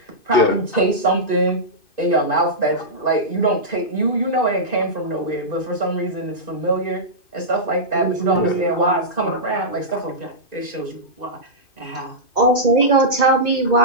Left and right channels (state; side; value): late; right; 2.5 ms